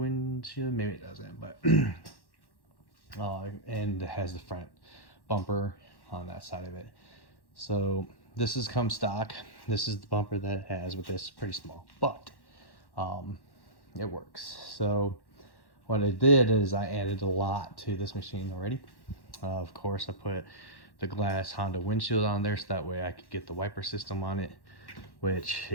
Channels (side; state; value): right; late; 1.1 ms